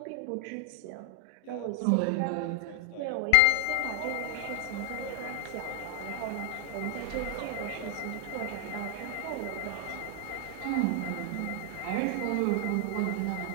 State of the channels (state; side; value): different; both; correlation 0.00